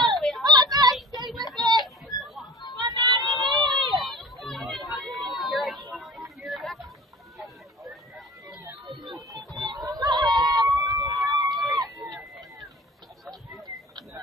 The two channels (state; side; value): normal; both; correlation 0.42